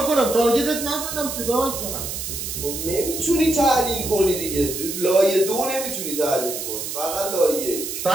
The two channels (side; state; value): right; noise; hiss, 5 dB below the sound